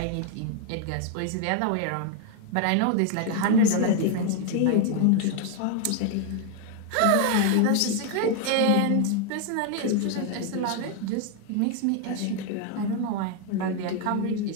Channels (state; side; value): different; both; correlation 0.01